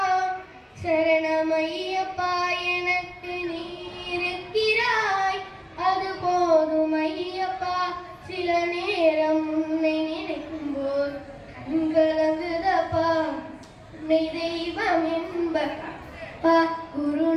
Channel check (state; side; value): identical; both; correlation 1.00